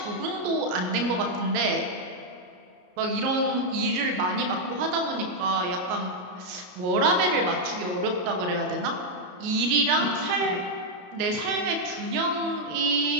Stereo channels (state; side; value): late; left; 33 ms